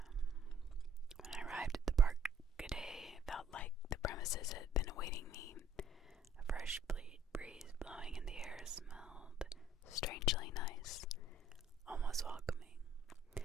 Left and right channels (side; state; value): both; normal; correlation 0.60